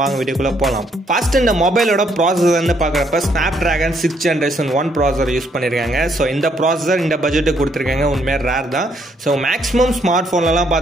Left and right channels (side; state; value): both; normal; correlation 0.71